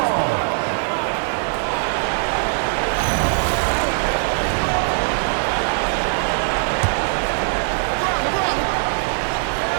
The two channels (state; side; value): silent; left; 65 dB below the other